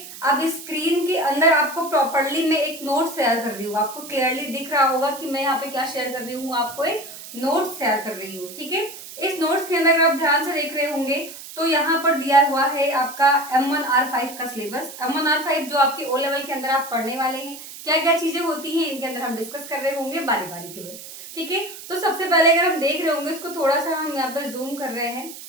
अब इस स्क्रीन के अंदर आपको प्रॉपरली मैं एक नोट शेयर कर रही हूँ। आपको क्लियरली दिख रहा होगा कि मैं यहाँ पे क्या शेयर कर रही हूँ, आपको एक नोट शेयर कर रही हूँ। ठीक है, इस नोट्स के अंदर अगर आप ध्यान से देख रहे होंगे तो यहाँ पर दिया हुआ है आपका M1R5 का सिलेबस। M1R5 जो आपके ओ लेवल के अंदर आप पढ़ने वाले हैं, क्या क्या चीजें होती हैं इनके अंदर हम डिस्कस कर रहे होंगे बारी बारी के बाद। ठीक है, तो सबसे पहले अगर हम देख रहे होंगे, इसको थोड़ा सा हम यहाँ पर जूम कर रहे हैं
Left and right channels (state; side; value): noise; right; hiss, 14 dB below the sound